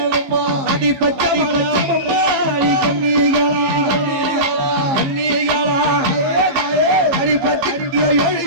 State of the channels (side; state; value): left; late; 15 ms